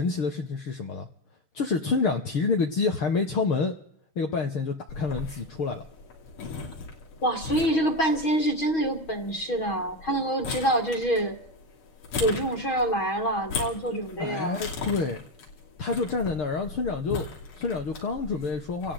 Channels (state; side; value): late; right; 6.3 ms